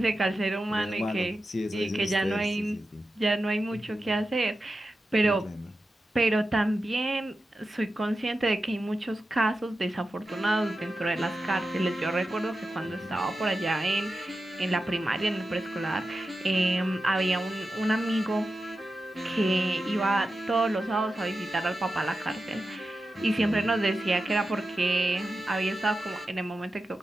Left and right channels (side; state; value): both; normal; correlation 0.91